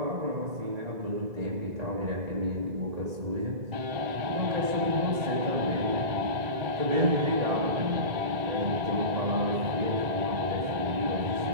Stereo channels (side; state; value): left; late; 2.0 ms